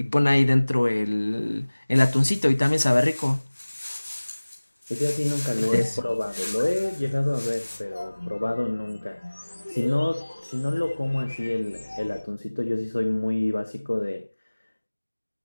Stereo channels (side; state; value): both; inverted; correlation -1.00